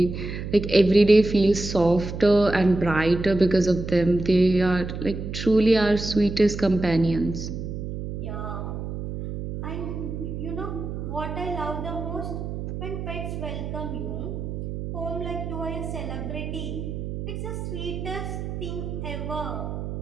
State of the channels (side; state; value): right; noise; hum, 6 dB below the sound